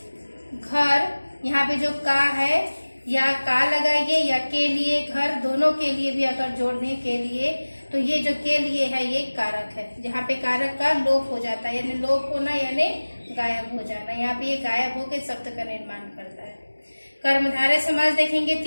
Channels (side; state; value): both; inverted; correlation -1.00